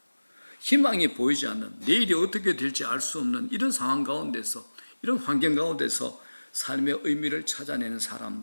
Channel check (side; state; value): both; inverted; correlation -1.00